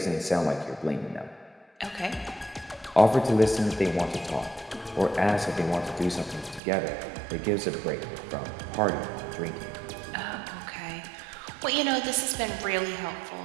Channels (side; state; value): left; drops out; at 6.6 s